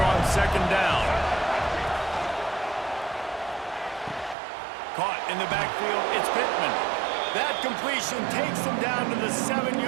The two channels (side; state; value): left; drops out; at 4.4 s